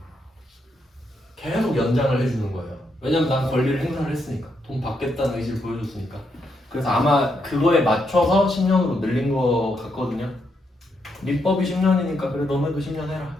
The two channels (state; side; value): normal; both; correlation 0.79